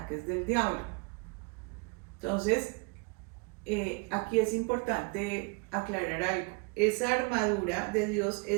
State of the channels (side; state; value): left; quieter; 32.2 dB